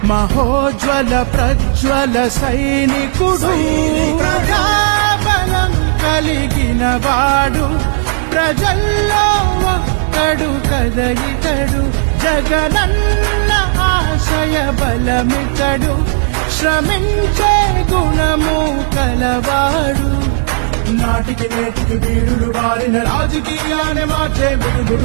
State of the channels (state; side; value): silent; left; digital silence